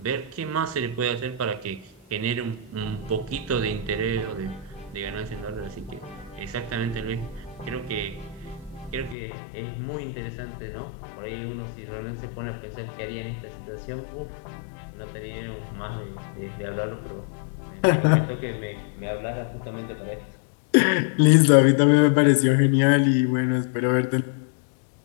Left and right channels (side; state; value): right; drops out; at 9.2 s